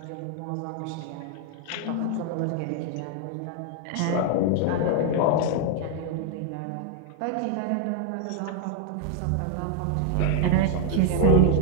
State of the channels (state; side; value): different; both; correlation 0.00